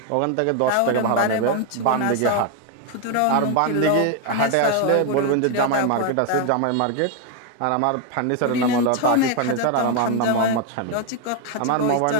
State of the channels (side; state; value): both; different; correlation 0.01